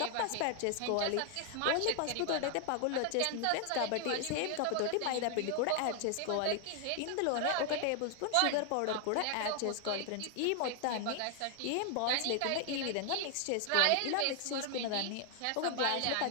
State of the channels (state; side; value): different; both; correlation 0.00